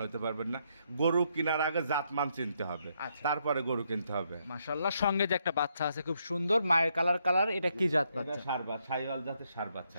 হতে পারবেন না। গরু কেনার আগে জাতমান চিনতে হবে, তারপরে গরু কিনতে হবে। মাশাআল্লাহ। সঙ্গে যে একটা বাচ্চা আছে খুব সুন্দর মায়ের কালার, এটা কি জাত বাচ্চা? এটা ষাঁড় শাহিওয়াল জাতের ষাঁড় বাচ্চা।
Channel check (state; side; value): inverted; both; correlation -0.76